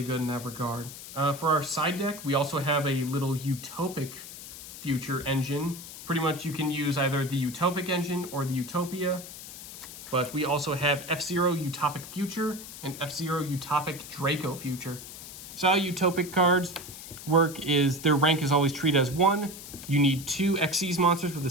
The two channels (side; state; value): left; noise; hiss, 13 dB below the sound